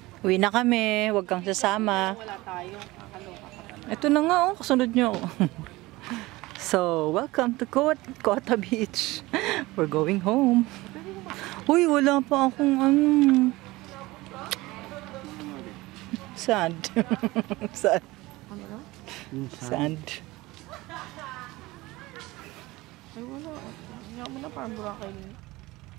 Uwi na kami. Huwag kang sasama. Wala tayo. Kakaloka ka. Ito na nga, oh. Kasunod nyo. So, welcome to Cota Beach. We're going home. Uy, wala pa akong sand. Sand. Sand. Ay, wala. Hindi mo na parang Boracay.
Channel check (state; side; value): quieter; left; 20.2 dB